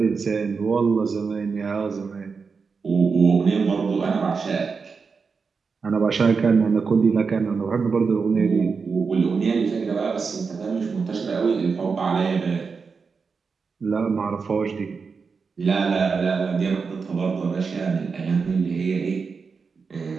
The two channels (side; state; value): left; quieter; 5.1 dB